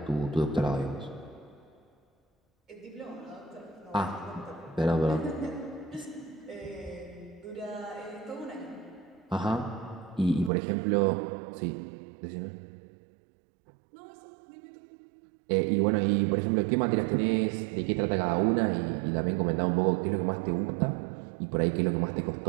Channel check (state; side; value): drops out; left; at 10.5 s